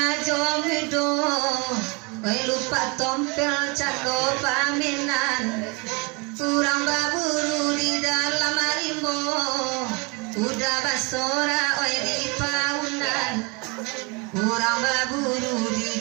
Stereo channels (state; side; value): quieter; left; 29.9 dB